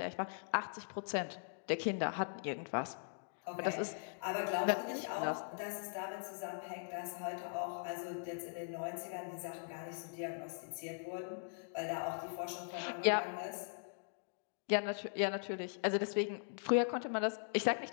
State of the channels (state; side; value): silent; right; digital silence